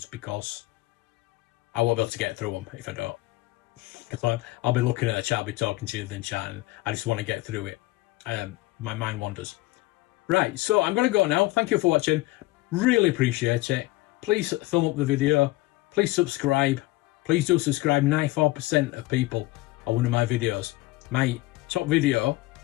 because I won't be able to get through them if I don't. Because I'll be looking at the chat, I'll be talking to you, then chatting. I just want to get through it. My mind wanders. Right, so I'm going to go now. Thank you for watching. Really appreciate it. Please thumb up the video. Please subscribe. Please do subscribe. 94% of people are one of my videos. My top video,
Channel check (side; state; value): right; quieter; 19.6 dB